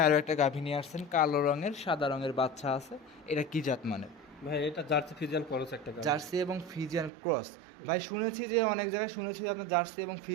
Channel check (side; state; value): left; drops out; at 7.1 s